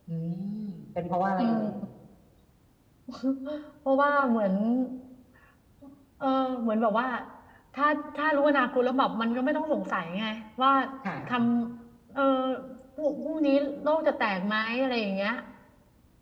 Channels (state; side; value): identical; both; correlation 1.00